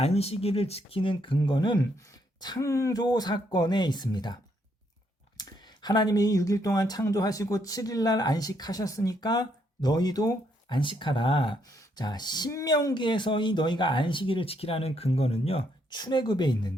지키는 근거는 창조 사건에 있습니다. 하나님이 6일 동안 창조하시고 7일날 안식하셨으니까 너희도 안식하라. 자, 신명기에서 이 너희가 안식일을 지키라는 근거는요, 출애굽에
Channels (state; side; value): normal; both; correlation 0.73